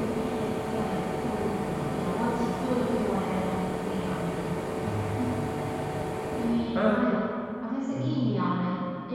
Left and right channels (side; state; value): both; identical; correlation 1.00